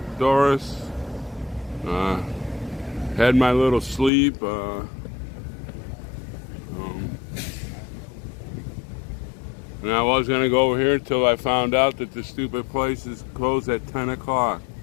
Had my little sleep. And I was going to go over here until I found out that the stupid place is closed at 10 o'clock.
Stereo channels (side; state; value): right; drops out; at 4.1 s